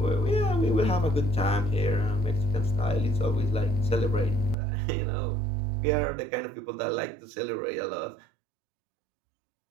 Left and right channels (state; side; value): drops out; left; at 4.5 s